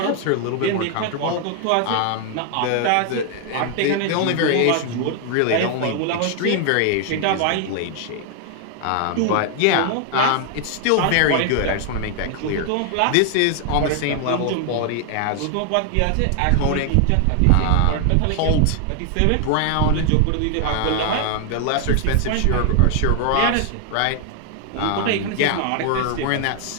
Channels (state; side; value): different; both; correlation 0.00